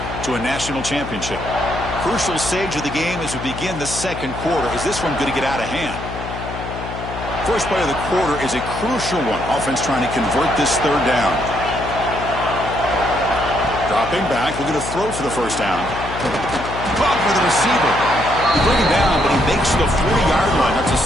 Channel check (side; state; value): left; noise; hum, 8 dB below the sound